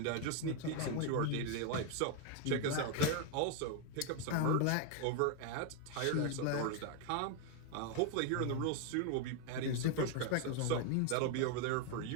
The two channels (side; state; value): both; different; correlation 0.01